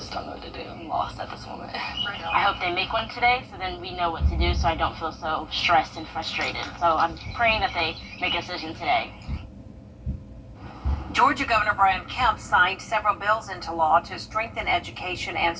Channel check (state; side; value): identical; both; correlation 1.00